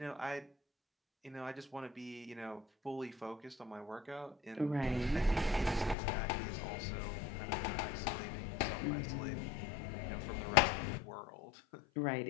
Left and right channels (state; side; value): drops out; right; at 6.0 s